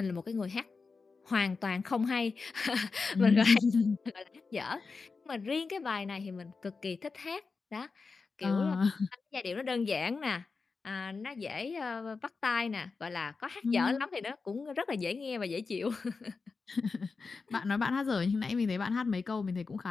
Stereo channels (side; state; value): right; quieter; 4.5 dB